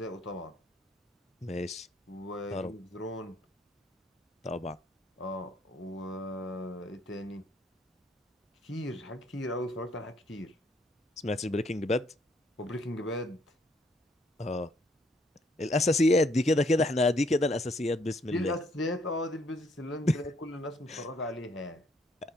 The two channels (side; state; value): both; normal; correlation 0.68